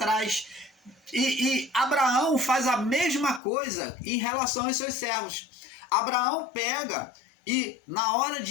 E Abraão faz a mesma coisa em relação aos seus servos. Abraão pega e na hora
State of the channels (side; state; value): right; drops out; at 3.4 s